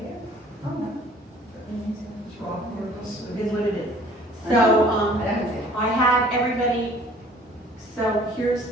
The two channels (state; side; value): normal; both; correlation 0.53